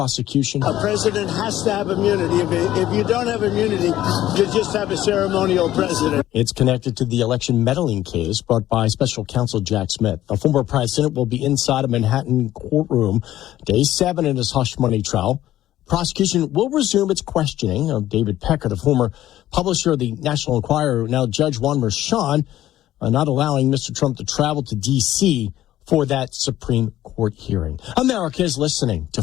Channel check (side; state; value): right; quieter; 13.6 dB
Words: A president has to have immunity. If you don't have immunity, you just have a ceremonial president. It's connected to the election meddling case brought by special counsel Jack Smith. The former president will be inside a Manhattan courtroom day 7 in his hush money trial. Prosecution will resume its questioning of David Pecker, the former publisher of the National Enquirer. Now Judge Juan Merchan not allowing Mr. Trump to travel to D.C. for that Supreme Court hearing. America is listening to